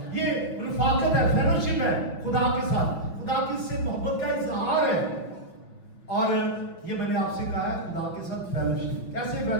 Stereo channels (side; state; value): right; late; 6.0 ms